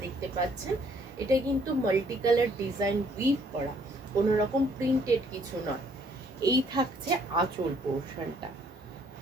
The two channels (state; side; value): normal; both; correlation 0.64